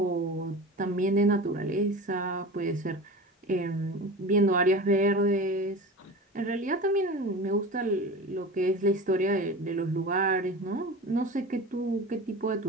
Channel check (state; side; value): normal; both; correlation 0.32